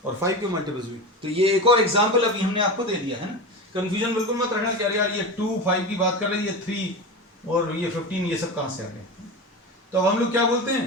और 5 के मल्टीपल्स भी। तो ये एक और एग्जांपल अभी हमने आपको दे दिया है ना। कंफ्यूजन बिल्कुल मत रखना कि यार ये 2 5 की बात कर रही है, 3 और ये 15 ये सब कहां से आ गए। तो अब हम लोग क्या बोलते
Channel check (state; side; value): normal; both; correlation 0.25